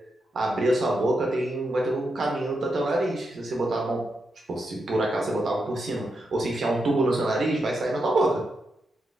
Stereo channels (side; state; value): both; normal; correlation 0.85